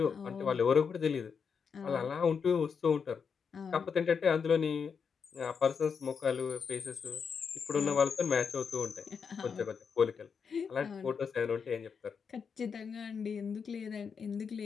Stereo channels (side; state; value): right; quieter; 6.2 dB